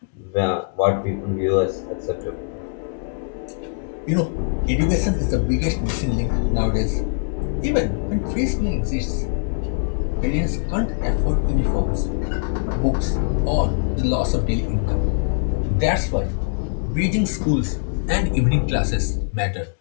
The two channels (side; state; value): right; silent; digital silence